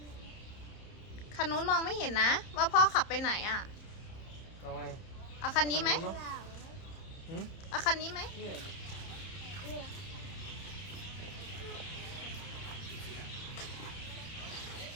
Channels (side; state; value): right; late; 31 ms